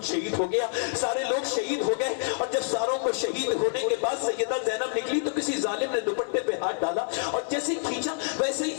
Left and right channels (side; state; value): right; silent; 60 dB below the other